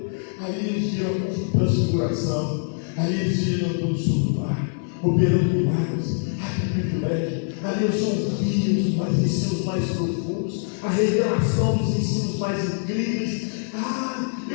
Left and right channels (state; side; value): silent; right; 63 dB below the other